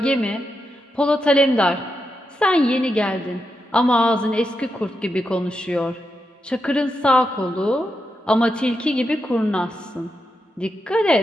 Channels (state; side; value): normal; both; correlation 0.86